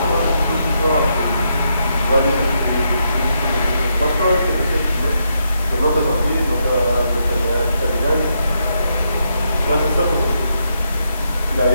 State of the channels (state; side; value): inverted; both; correlation -0.80